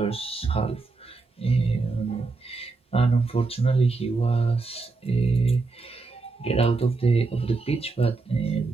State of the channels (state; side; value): quieter; left; 3.9 dB